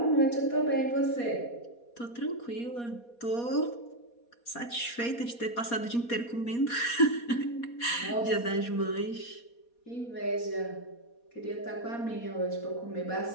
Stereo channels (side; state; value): right; late; 4.2 ms